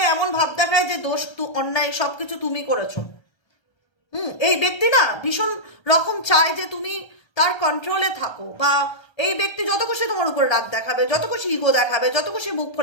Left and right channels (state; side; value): late; right; 1.3 ms